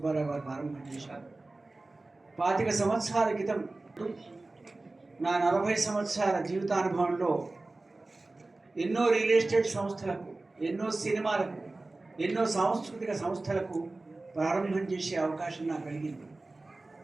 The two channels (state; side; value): quieter; left; 3.1 dB